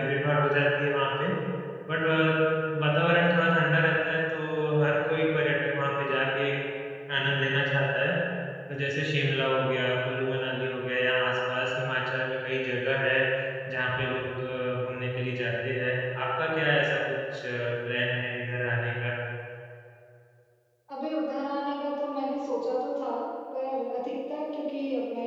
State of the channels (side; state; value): both; identical; correlation 1.00